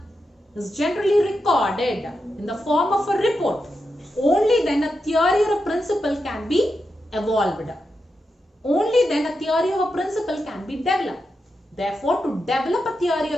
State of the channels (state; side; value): normal; both; correlation 0.87